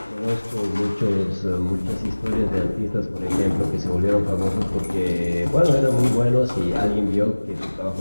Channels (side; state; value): both; inverted; correlation -1.00